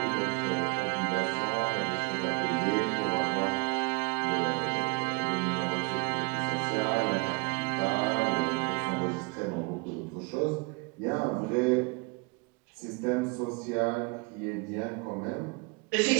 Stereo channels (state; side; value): quieter; left; 28.8 dB